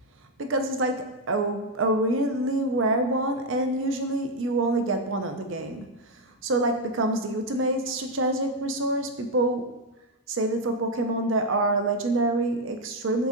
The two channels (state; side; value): normal; both; correlation 0.04